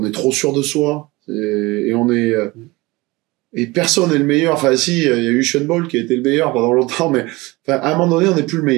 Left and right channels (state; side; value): quieter; left; 22.2 dB